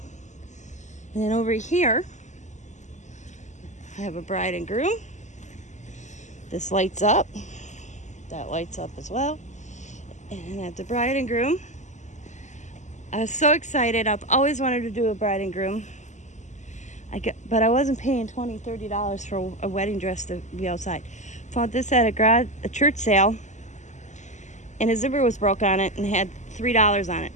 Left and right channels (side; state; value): right; late; 0.34 ms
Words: And then over here, I have a bride and groom. This lights up. That lights up as well. And I have the bride and groom. I was so excited. I've always wanted to do a bride and groom. But I wasn't paying $20, $30 for a wedding dress to be outside. Found this at a church sale. And a zipper was broke on it and had $3 on it.